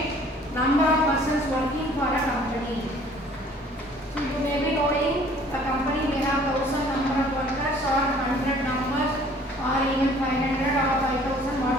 number of persons working for a company. So you may be knowing a company may have 1,000 number of workers or 100 numbers or even 500 or 5,000,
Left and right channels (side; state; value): both; normal; correlation 0.54